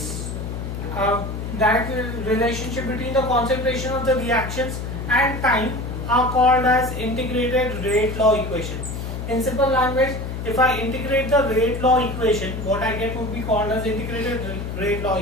direct relationship between the concentration of the reactions and time are called as integrated rate law equation. In simple language, if I integrate the rate law equation, what I get would be called as integrated rate law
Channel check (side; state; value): left; noise; hum, 6 dB below the sound